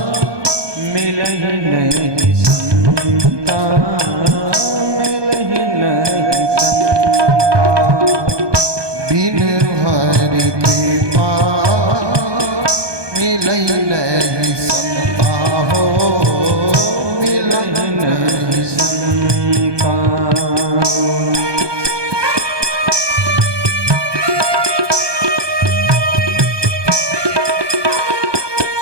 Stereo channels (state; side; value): late; left; 1.2 ms